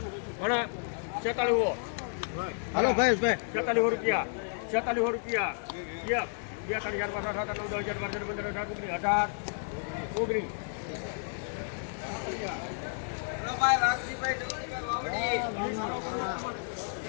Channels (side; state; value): right; silent; digital silence